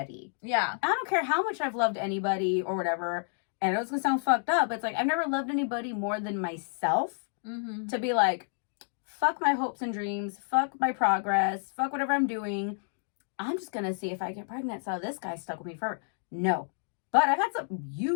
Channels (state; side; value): silent; right; 58 dB below the other